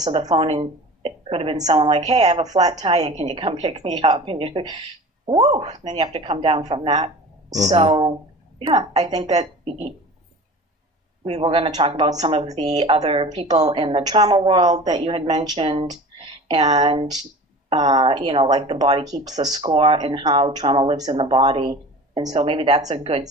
the phone, and it could have been someone like, hey, I have a flat tire, can you come pick me up? And then you have to come down from that. So yeah, I think that we were going to talk about some of the other people in the trauma world that you had mentioned, and like the body keeps the score and how trauma lives in the body. And so maybe that's a good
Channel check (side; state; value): both; normal; correlation 0.38